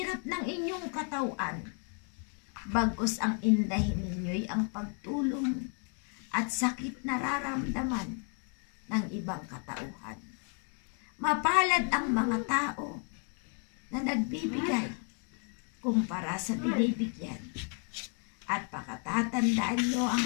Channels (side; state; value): right; quieter; 39.8 dB